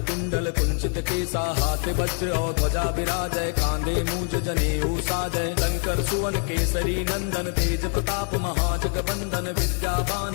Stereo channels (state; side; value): quieter; right; 38.6 dB